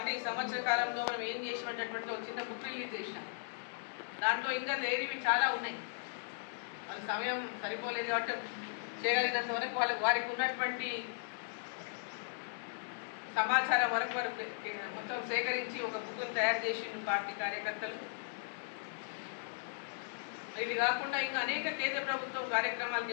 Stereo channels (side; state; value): right; silent; digital silence